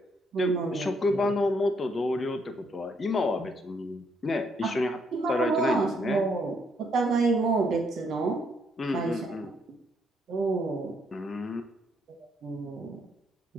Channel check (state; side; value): normal; both; correlation 0.72